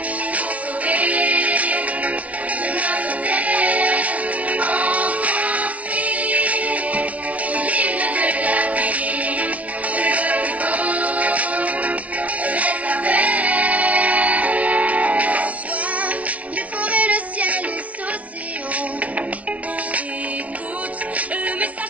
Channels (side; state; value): left; late; 0.067 ms